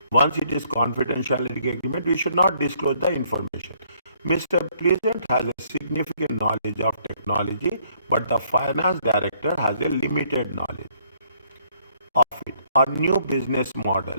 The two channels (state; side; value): inverted; both; correlation -0.66